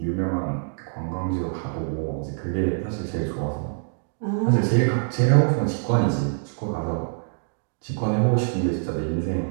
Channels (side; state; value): left; silent; digital silence